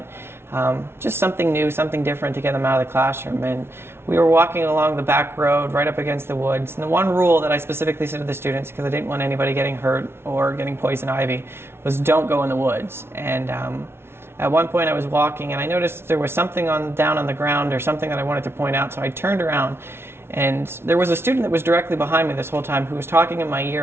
just something new, something different to get them out of the classroom. And we were walking along the back road right up against the woods, and the one rule that I specifically said to the students, because I didn't want anybody getting hurt or getting poison ivy, was don't go in the woods. And at one point I was walking and I noticed there was something down on the ground or something that I wanted to point out, so I turned around and there was a student that was directly behind me this whole time who was talking in my ear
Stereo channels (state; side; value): late; left; 0.12 ms